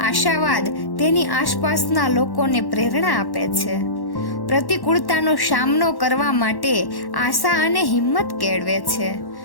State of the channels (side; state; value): right; late; 1.1 ms